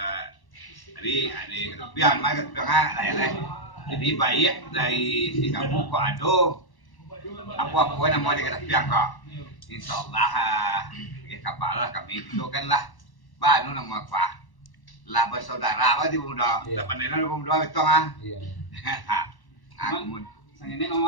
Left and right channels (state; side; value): late; right; 1.1 ms